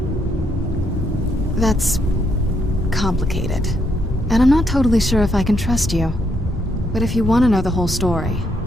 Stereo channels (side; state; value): both; normal; correlation 0.75